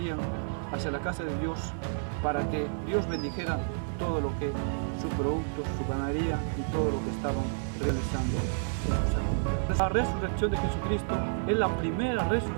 hacia la casa de Dios para que Dios bendijera todo lo que su producto, su ganadería y todo lo que estaban realizando en sus años. La resurrección de Jesucristo es la primera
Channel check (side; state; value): left; silent; digital silence